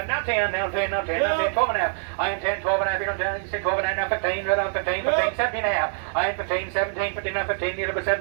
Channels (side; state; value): left; silent; digital silence